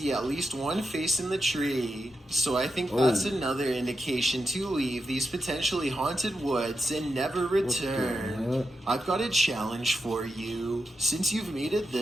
at least one face in the tree. So I think Oh. that's another indication to leave these potentially haunted woods and never return. heck? I've got a challenge for you. Since you've made it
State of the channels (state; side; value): normal; both; correlation 0.88